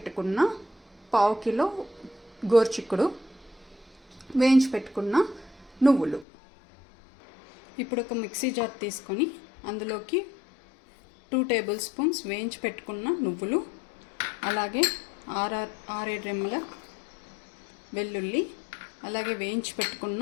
1/2 కిలో గోరు చిక్కుడు, వేయించి పెట్టుకున్న నువ్వులు. ఇప్పుడు ఒక మిక్సీ జార్ తీసుకొని అందులోకి 2 టేబుల్ స్పూన్స్ వేయించి పెట్టుకున్న నువ్వులు, అలాగే 6-7 రెమ్మల వెల్లుల్లి, అలాగే వేయించి పెట్టుకున్న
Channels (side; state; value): right; drops out; at 6.2 s